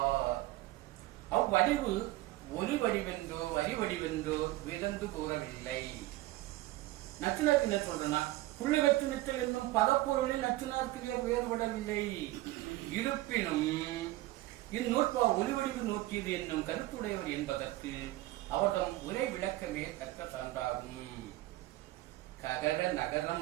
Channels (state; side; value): quieter; left; 17.5 dB